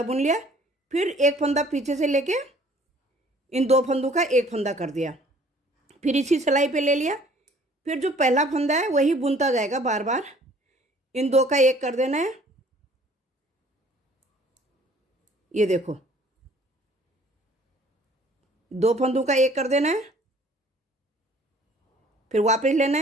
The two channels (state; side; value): normal; both; correlation 0.55